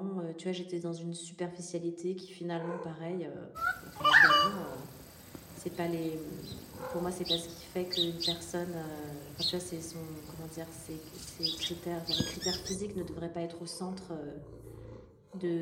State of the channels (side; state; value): both; identical; correlation 1.00